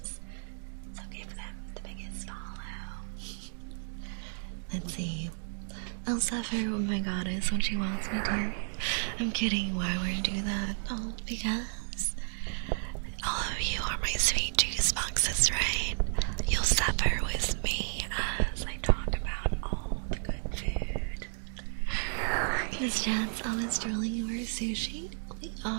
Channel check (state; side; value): silent; left; digital silence